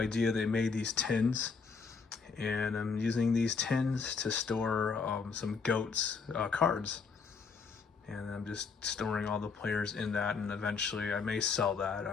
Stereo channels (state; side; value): quieter; right; 5.2 dB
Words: They made these tins, and I'm using these tins to store some GOATs cards, and I'm just storing all the players in that, and eventually I may sell that,